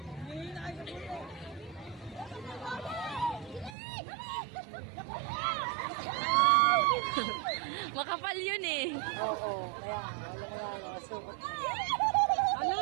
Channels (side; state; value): left; drops out; at 3.8 s